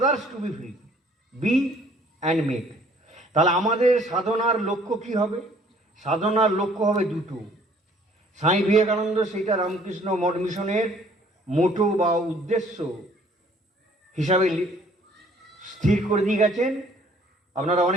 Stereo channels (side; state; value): both; normal; correlation 0.58